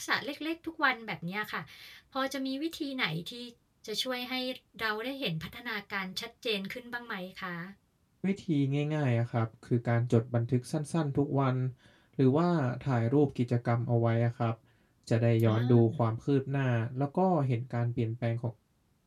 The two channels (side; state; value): both; identical; correlation 1.00